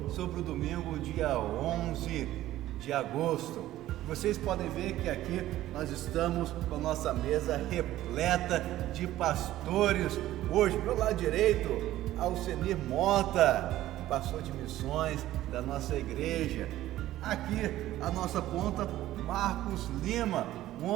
sobre o domingo, dia 11 de agosto. Vocês podem ver que aqui nós estamos com a nossa mesa repleta de pastores. Hoje, pelo lado direito, Alcenir Mota, pastor de missões da nossa igreja. Aqui, a nossa ponta, Marcos Lima, um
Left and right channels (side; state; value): left; quieter; 14.5 dB